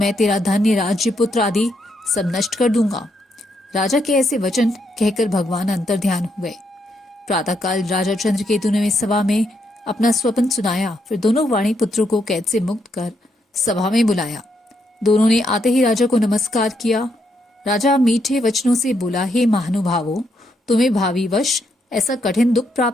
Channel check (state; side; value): normal; both; correlation 0.78